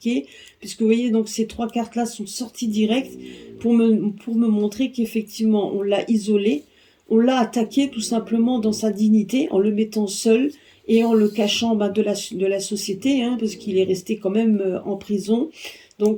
puisque vous voyez donc ces trois cartes là sont sorties direct pour me montrer qu'effectivement on l'a isolé, on l'a attaqué tout simplement dans sa dignité en le mettant seul et en le cachant de la société, hein, parce qu'il est resté quand même en prison, donc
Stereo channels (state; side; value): identical; both; correlation 1.00